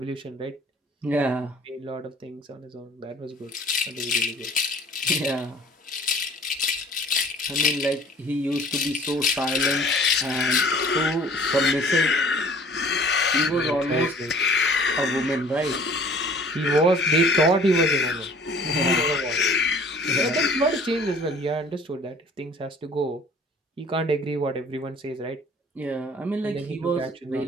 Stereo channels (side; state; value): both; normal; correlation 0.51